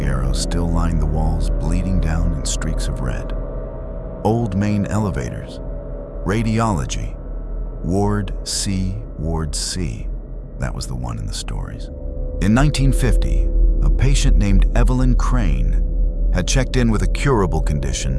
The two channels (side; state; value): both; identical; correlation 1.00